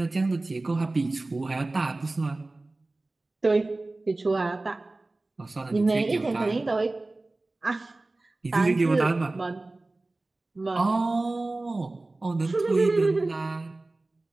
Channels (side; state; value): left; quieter; 3.0 dB